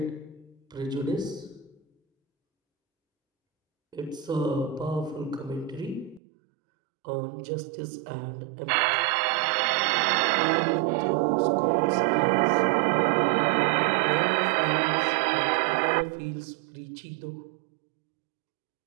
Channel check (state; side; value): drops out; left; at 6.2 s